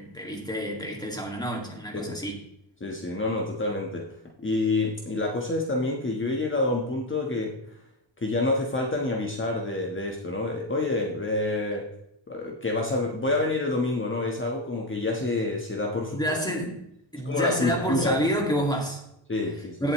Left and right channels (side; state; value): both; normal; correlation 0.16